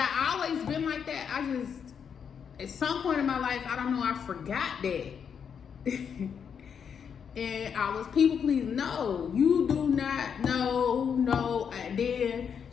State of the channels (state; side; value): quieter; right; 7.2 dB